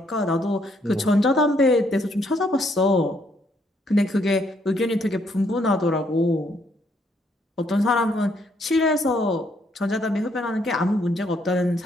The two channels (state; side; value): normal; both; correlation 0.71